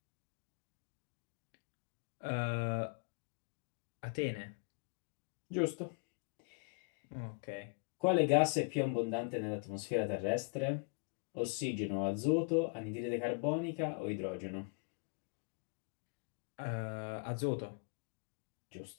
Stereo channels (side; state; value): right; quieter; 35.9 dB